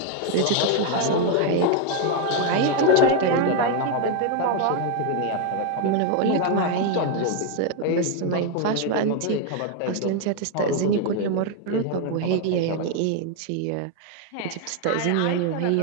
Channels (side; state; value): both; different; correlation 0.01